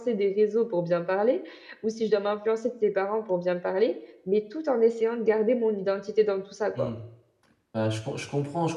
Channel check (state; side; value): identical; both; correlation 1.00